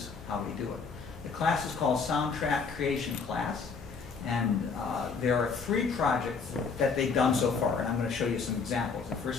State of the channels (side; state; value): right; quieter; 5.1 dB